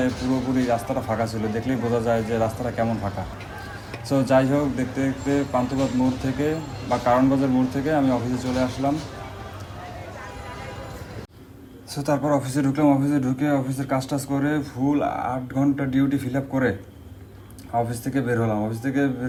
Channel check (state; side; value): identical; both; correlation 1.00